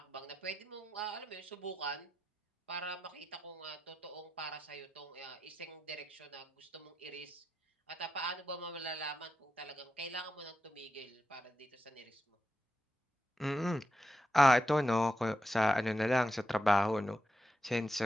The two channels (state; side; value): normal; both; correlation 0.87